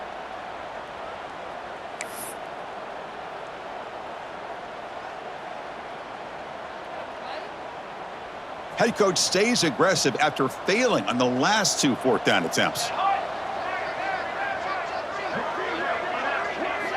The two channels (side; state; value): both; identical; correlation 1.00